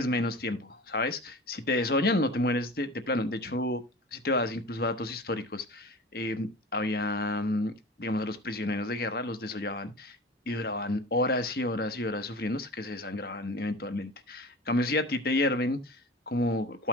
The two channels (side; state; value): both; normal; correlation 0.36